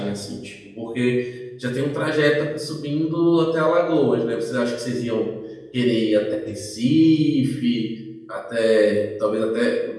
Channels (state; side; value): identical; both; correlation 1.00